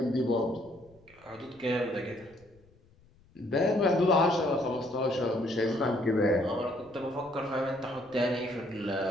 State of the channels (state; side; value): noise; left; rumble, 29 dB below the sound